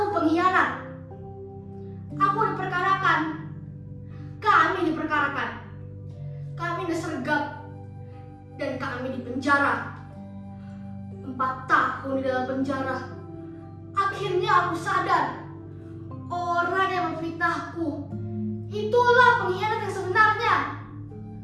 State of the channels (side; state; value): both; identical; correlation 1.00